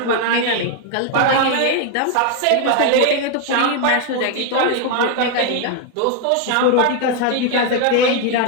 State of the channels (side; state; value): both; different; correlation 0.01